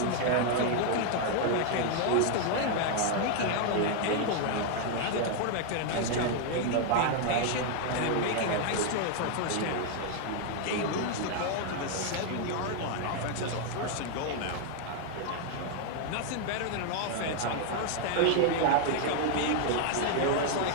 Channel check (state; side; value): different; both; correlation 0.00